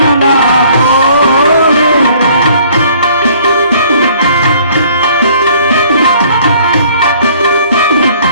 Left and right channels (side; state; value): both; inverted; correlation -0.57